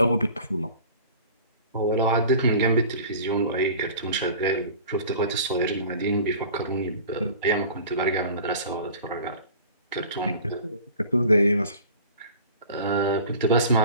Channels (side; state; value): both; inverted; correlation -0.43